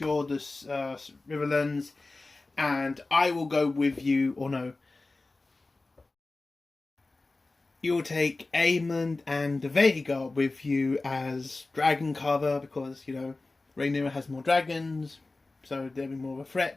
the Riverlands, and I will go with you, or no, you'll take Aemond and Vhagar with you as dragon cover, because, you know, Rhaenyra has more dragons, so they'll be more of a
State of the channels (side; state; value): right; quieter; 3.3 dB